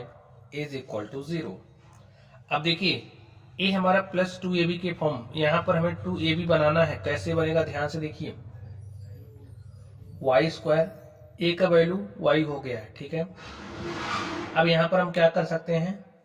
is equal to 0। अब देखिए ये हमारा प्लस 2ab के फॉर्म, यहाँ पर हमें 2ab बनाना है। कैसे बनेगा, ध्यान से देखिए, y स्क्वायर, a का वैल्यू y हो गया है, ठीक है। अब यहाँ पर हम क्या कर सकते हैं,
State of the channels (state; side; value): identical; both; correlation 1.00